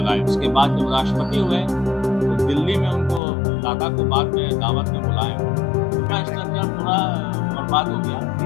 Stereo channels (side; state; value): right; drops out; at 3.2 s